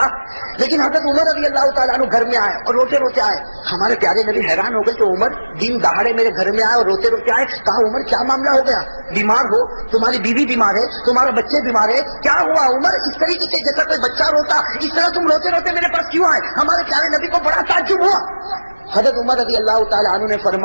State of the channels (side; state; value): both; inverted; correlation -1.00